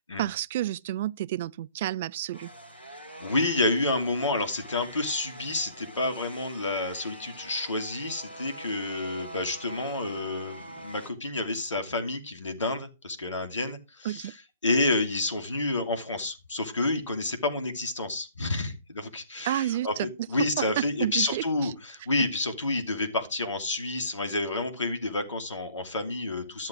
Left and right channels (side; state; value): both; inverted; correlation -0.55